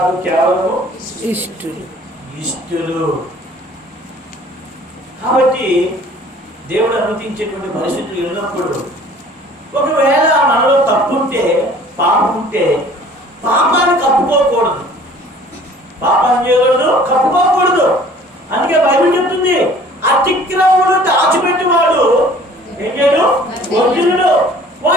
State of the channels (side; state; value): both; normal; correlation 0.51